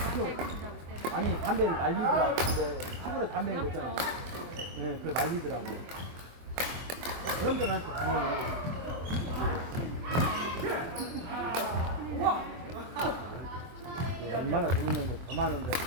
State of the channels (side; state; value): left; late; 23 ms